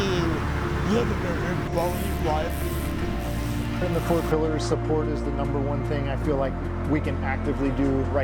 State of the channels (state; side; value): identical; both; correlation 1.00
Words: live a better quality of life. In the 4 pillars, support is the number one thing I feel like we can actively do